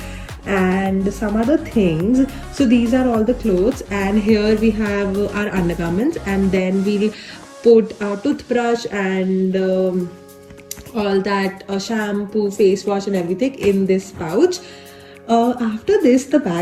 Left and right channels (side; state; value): both; identical; correlation 1.00